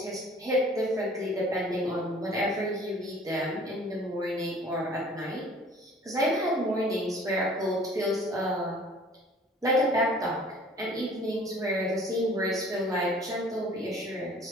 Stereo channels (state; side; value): normal; both; correlation 0.51